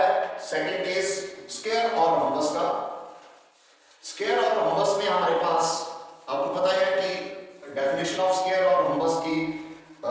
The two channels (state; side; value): identical; both; correlation 1.00